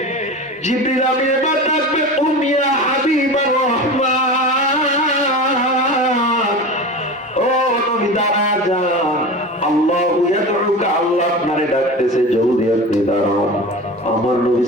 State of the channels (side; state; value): both; normal; correlation 0.30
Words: জিবরিল আমিন এবার ডাকবে, উমিয়া হাবিবার রহমান, ও নবী দাঁড়া যান, আল্লাহু ইয়াদউকা, আল্লাহ আপনারে ডাকতেছে, জলদি আপনি দাঁড়ান। আমার নবী